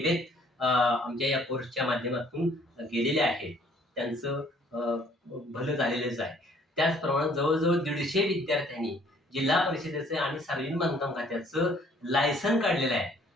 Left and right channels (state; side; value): normal; both; correlation 0.60